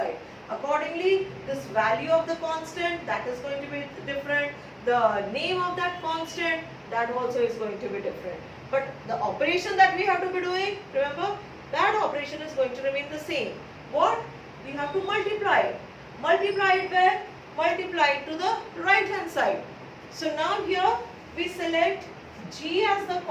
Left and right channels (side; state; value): both; identical; correlation 1.00